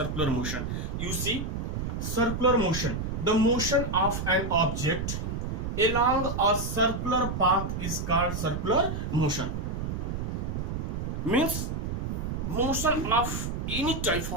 motion? You see, circular motion, the motion of an object along a circular path is called circular motion. Means motion of any type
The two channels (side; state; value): right; noise; rumble, 3 dB below the sound